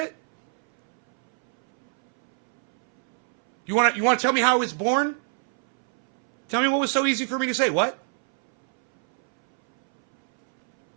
You want to tell me how I was born? Tell me what was so easy for me to say. What?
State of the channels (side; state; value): left; silent; 63 dB below the other